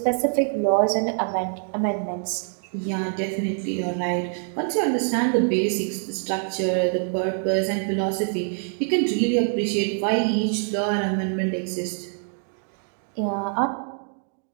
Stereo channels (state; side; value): silent; left; 59 dB below the other